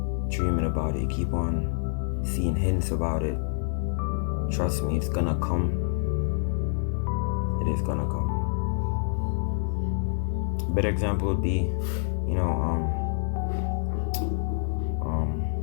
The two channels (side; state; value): right; silent; digital silence